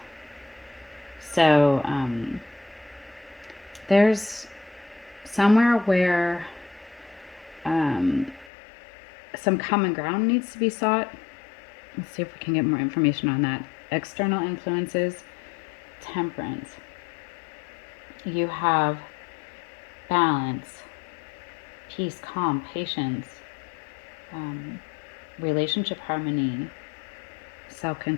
So there's somewhere where some common ground needs to be sought. Let's see if we can get more information on that. External influences, Temperance. You have balance, peace, calm, patience, relationship harmony,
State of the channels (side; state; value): right; drops out; at 8.5 s